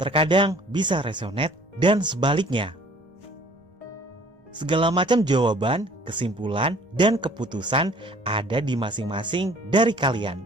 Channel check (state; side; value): normal; both; correlation 0.53